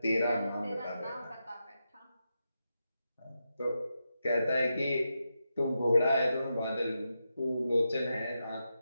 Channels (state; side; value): inverted; both; correlation -0.87